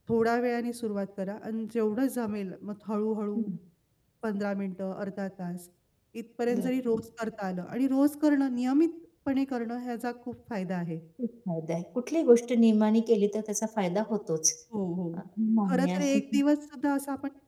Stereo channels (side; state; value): both; identical; correlation 1.00